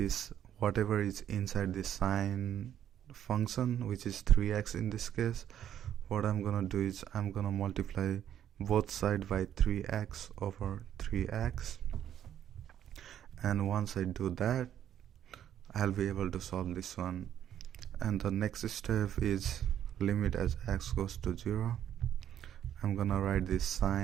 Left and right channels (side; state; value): left; quieter; 10.4 dB